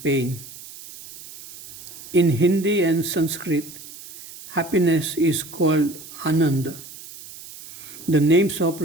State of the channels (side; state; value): right; noise; hiss, 16 dB below the sound